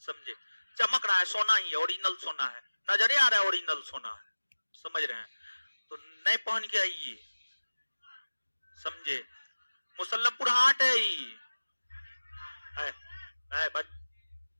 समझे? चमक रहा है, सोना ही है, ओरिजिनल सोना है, नजरे आ रहा है ओरिजिनल सोना है, समझ रहे हैं? तो नए पहन के आइए, समझे? मुसल्लमपुर हाट है ही है बस।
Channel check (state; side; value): inverted; both; correlation -1.00